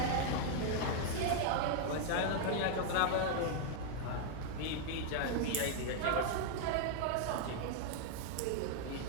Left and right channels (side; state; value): both; different; correlation 0.00